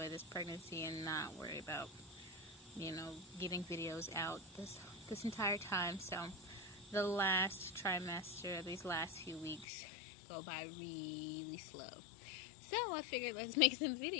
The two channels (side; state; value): right; drops out; at 9.7 s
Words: this pregnancy and not worry about, getting videos out this entire time. So the last trimester, these last few weeks, go by really slow. So I figured let's make some